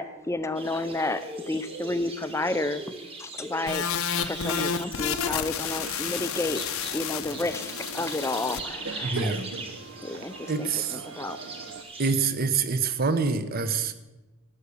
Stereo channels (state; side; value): normal; both; correlation 0.39